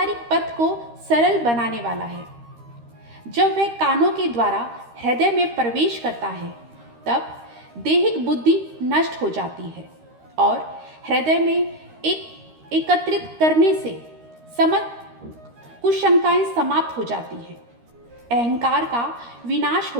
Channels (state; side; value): late; left; 13 ms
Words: पथ को सरल बनाने वाला है। जब वह कानों के द्वारा हृदय में प्रवेश करता है तब दैहिक बुद्धि नष्ट हो जाती है और हृदय में एकत्रित करने से समस्त कुशंकाएं समाप्त हो जाती हैं। अहंकार का विनाश हो